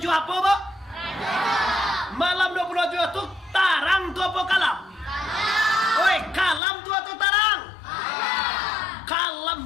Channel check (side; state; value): right; drops out; at 6.6 s